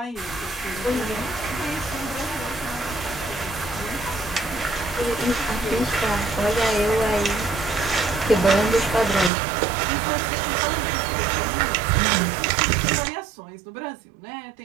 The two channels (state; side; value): drops out; left; at 9.3 s